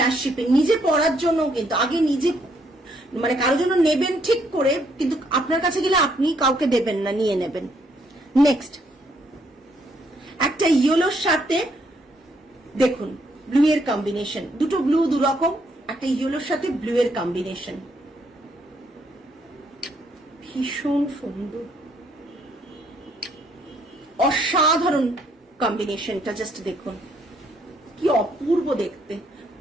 shipping. নিজে পরার জন্য কিন্তু আগে নিজে মানে কারোর জন্য নেবেন ঠিক করে, কিন্তু আপনার কাছে গেলে আপনি কাউকে দেবেন না, নিয়ে নেবেন। নেক্সট একটা ইয়েলোর সাথে দেখুন ব্লু এর কম্বিনেশন, দুটো ব্লু দুরকম, একটা ইয়েলোর সাথে ব্লু এর কম্বিনেশন, ভীষণ সুন্দর, অসাধারণ কম্বিনেশনটা জাস্ট দেখুন, কি অপূর্ব দেখতে।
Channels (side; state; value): both; normal; correlation 0.71